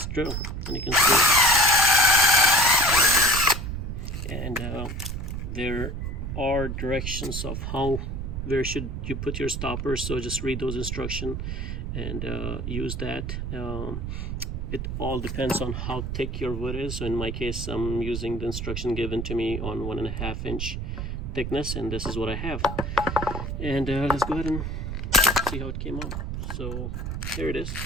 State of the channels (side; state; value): right; noise; rumble, 4 dB below the sound